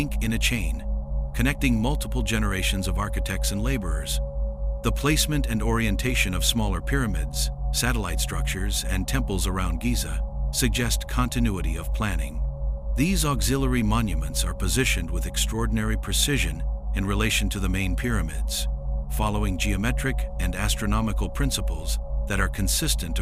in a chain, connecting multiple generations of architects and laborers. The placement and orientation of smaller pyramids, satellite structures, and temples around Giza suggest continuity of planning. These auxiliary monuments are positioned with extraordinary precision in relation to the main pyramids, following geometric and astronomical principles that are consistent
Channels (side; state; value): both; identical; correlation 1.00